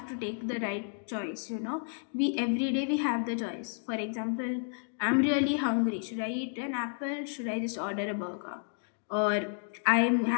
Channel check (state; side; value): silent; right; digital silence